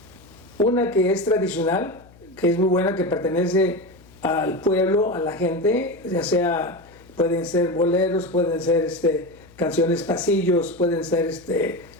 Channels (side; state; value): left; noise; hum, 25 dB below the sound